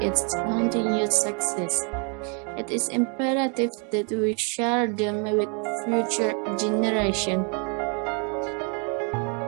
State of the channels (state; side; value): quieter; left; 38.1 dB